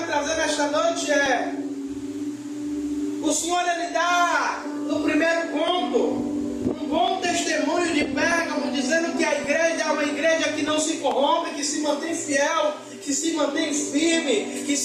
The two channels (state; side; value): identical; both; correlation 1.00